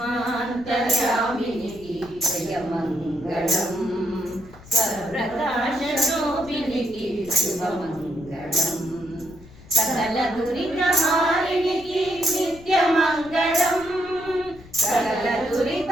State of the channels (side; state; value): left; noise; rumble, 20 dB below the sound